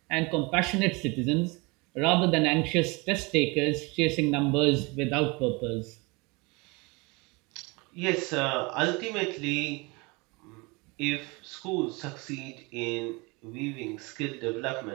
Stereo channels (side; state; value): left; quieter; 26.9 dB